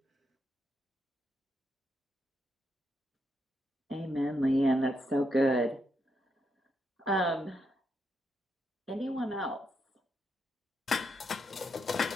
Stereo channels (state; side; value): normal; both; correlation 0.80